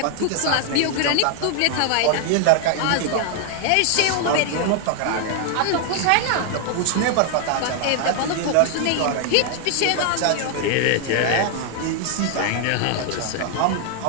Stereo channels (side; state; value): both; different; correlation 0.00